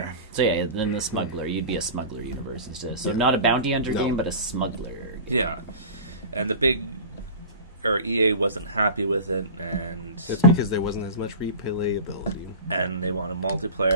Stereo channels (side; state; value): both; inverted; correlation -0.35